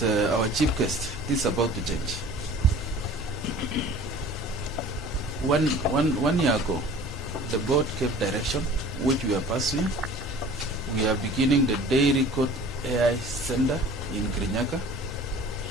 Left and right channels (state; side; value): normal; both; correlation 0.45